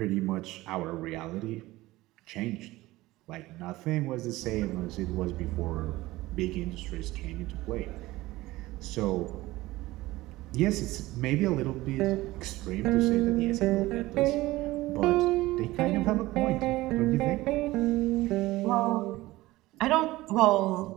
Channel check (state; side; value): quieter; left; 18.4 dB